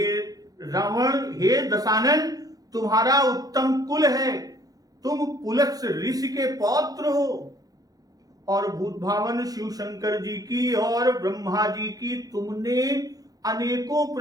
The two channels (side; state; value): left; late; 0.18 ms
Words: रावण, हे दशानन, तुम्हारा उत्तम कुल है, तुम पुलस्त्य ऋषि के पौत्र हो और भूतभावन शिव शंकर जी की और ब्रह्मा जी की तुमने अनेकों